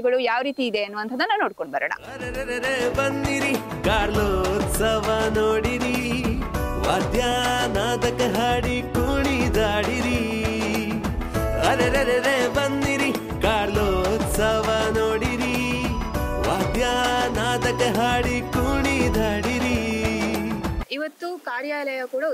ಯಾವ ರೀತಿ ಇದೆ ಅನ್ನುವಂಥದ್ದನ್ನ ನೋಡ್ಕೊಂಡು ಬರೋಣ. ಬನ್ನಿರಿ ಕಾರ್ಲೋತ್ಸವ ನೋಡಿರಿ, ವಾದ್ಯ ನಾದಕ ಹಾಡಿ ಕುಣಿದಾಡಿರಿ. ಅರೆರೆರೆ ಬನ್ನಿರಿ ಕಾರ್ಲೋತ್ಸವ ನೋಡಿರಿ, ವಾದ್ಯ ನಾದಕ ಹಾಡಿ ಕುಣಿದಾಡಿರಿ. ಇವತ್ತು ಕಾರ್ಯಾಲಯ ಕೂಡ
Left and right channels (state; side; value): identical; both; correlation 1.00